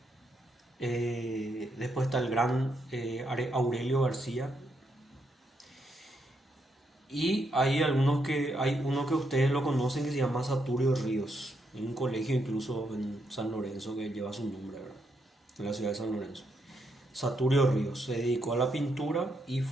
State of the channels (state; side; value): normal; both; correlation 0.78